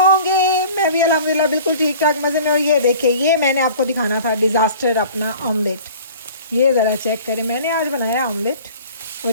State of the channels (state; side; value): inverted; both; correlation -0.45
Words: मैं भी अल्हम्दुलिल्लाह बिल्कुल ठीक ठाक मज़े में। और ये देखिए, ये मैंने आपको दिखाना था डिज़ास्टर अपना ऑमलेट। ये ज़रा चेक करें, मैंने आज बनाया ऑमलेट।